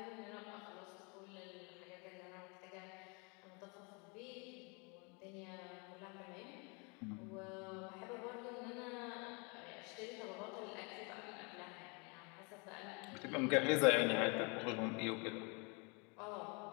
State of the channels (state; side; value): quieter; right; 32.0 dB